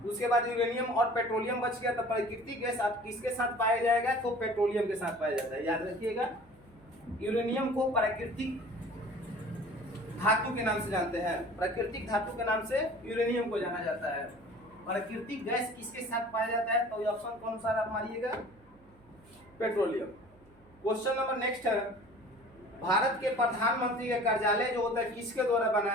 उसके बाद यूरेनियम और पेट्रोलियम बच गया, तो प्राकृतिक गैस आप किसके साथ पाया जाएगा? तो पेट्रोलियम के साथ पाया जाता है, याद रखिएगा। यूरेनियम को प्राकृतिक धातु के नाम से जानते हैं, प्राकृतिक धातु के नाम से यूरेनियम को जाना जाता है। प्राकृतिक गैस किसके साथ पाया जाता है? तो ऑप्शन कौन सा आप मारिएगा? पेट्रोलियम। क्वेश्चन नंबर नेक्स्ट है, भारत के प्रधानमंत्री का कार्यालय जो होता है किसके द्वारा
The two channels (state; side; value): noise; right; hum, 28 dB below the sound